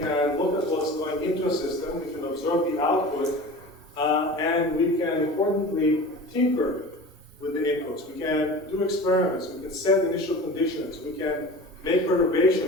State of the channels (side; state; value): both; normal; correlation 0.36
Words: look at what's going into a system, we can observe the output, and we can importantly tinker with the inputs. We can do experiments, we can set initial conditions, we can make